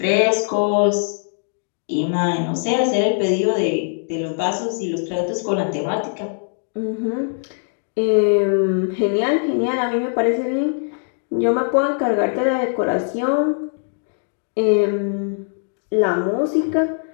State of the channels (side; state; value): right; silent; 65 dB below the other